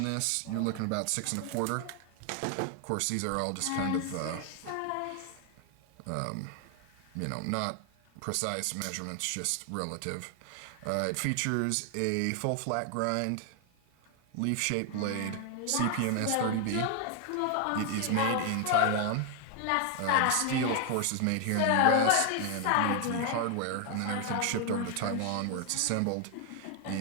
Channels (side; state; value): both; different; correlation 0.00